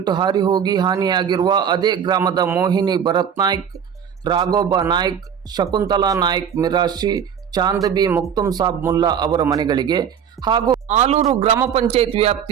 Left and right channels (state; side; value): quieter; left; 8.1 dB